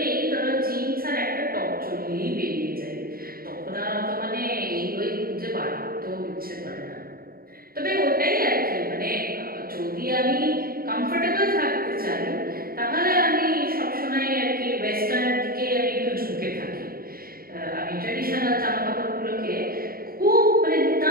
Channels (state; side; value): late; left; 0.43 ms